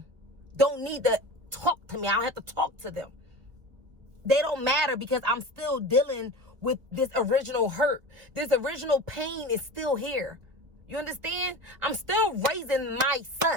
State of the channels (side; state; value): left; late; 1.5 ms